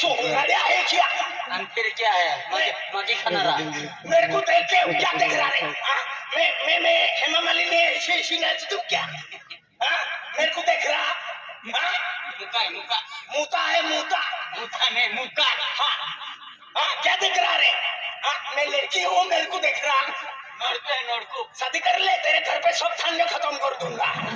है क्या फिर क्या है मगे खाना रहा मेरे को देख के क्या देख रहा है मैं हेमा मालिनी ऐसी नाच दूं क्या मेरे को देख रहा मुका क्या देख रहा रे मैं लड़की हूँ मेरे को देख रहा नोड़को शादी कर ले तेरे घर पे सब थाने खत्म कर दूंगा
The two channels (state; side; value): identical; both; correlation 1.00